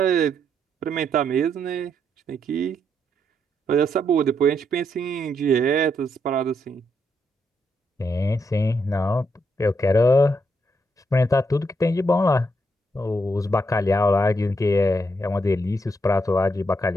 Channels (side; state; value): both; normal; correlation 0.77